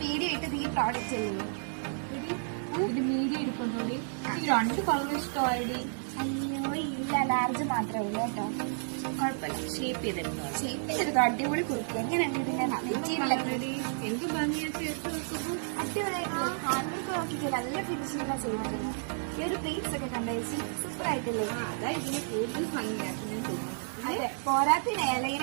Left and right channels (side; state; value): left; silent; digital silence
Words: വീഡിയോ ഇട്ടത് ഈ പ്രോഡക്റ്റ് അല്ലേ? ഇത് മീഡിയം എടുക്കൊണ്ടോടി. എനിക്ക് 2 കളർ ഇഷ്ടമായിടി. അയ്യോ ഇല്ല, ലാർജ് മാത്രമേ ഉള്ളൂ കേട്ടോ. കുഴപ്പമില്ല, ഷേപ്പ് ചെയ്തെടുത്തോ. ഷേപ്പിലെടുത്തോ, അടിപൊളി കുർത്തി. എങ്ങനെയുണ്ട് ഇതിന്റെ മെറ്റീരിയലൊക്കെ? എന്ത് ഭംഗിയാ ചേർത്ത് വെക്കുമ്പോ. അടിപൊളിയായിട്ടുള്ള ഹാൻഡ്ബാഗ് നോക്കിയിട്ട് നല്ല ഫിനിഷിംഗാണ് ചെയ്യുന്നത്. ഈ ഒരു പ്ലേറ്റ്സ് ഒക്കെ കണ്ടേച്ച് സൂപ്പർ ആയിട്ടില്ലേ? അതാ ഇതിന് കൂടുതൽ ഭംഗിയാക്കി ഞാൻ തോന്നുന്നു. അതെ, പോരാത്തിന്